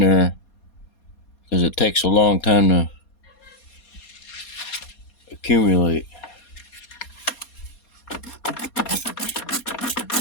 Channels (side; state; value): right; late; 4.2 ms